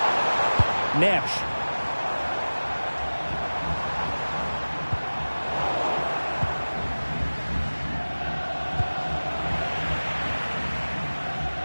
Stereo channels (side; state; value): both; inverted; correlation -1.00